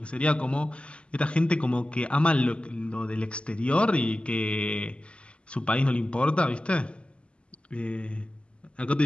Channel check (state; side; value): late; right; 0.056 ms